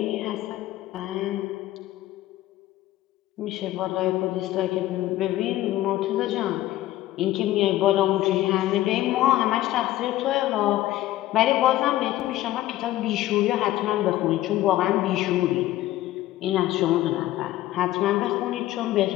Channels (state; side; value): quieter; right; 15.1 dB